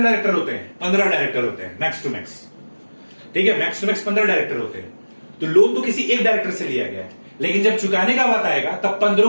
डायरेक्टर होते हैं? 15 डायरेक्टर होते हैं मैक्स टू मैक्स। ठीक है, मैक्स टू मैक्स 15 डायरेक्टर होते हैं। तो लोन तो किसी एक डायरेक्टर से लिया गया है, लेकिन जब चुकाने का बात आएगा तब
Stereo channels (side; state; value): both; inverted; correlation -1.00